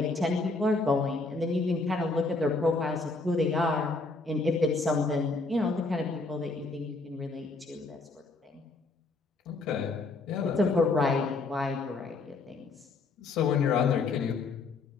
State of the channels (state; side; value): quieter; right; 3.6 dB